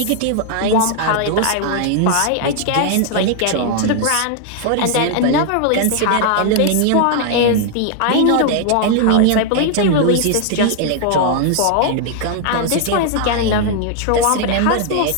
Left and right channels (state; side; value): different; both; correlation 0.00